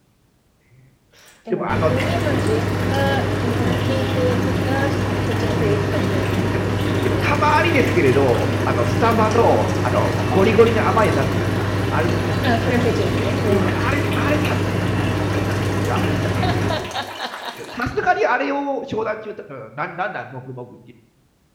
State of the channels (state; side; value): identical; both; correlation 1.00